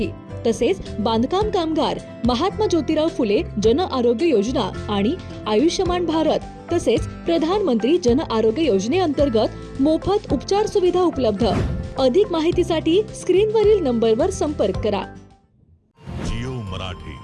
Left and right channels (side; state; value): both; identical; correlation 1.00